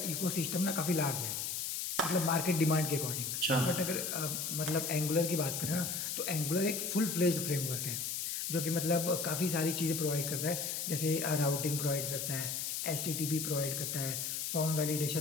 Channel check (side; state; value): left; noise; hiss, 2 dB below the sound